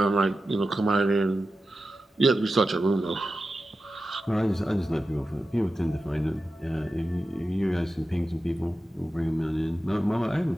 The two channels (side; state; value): both; normal; correlation 0.92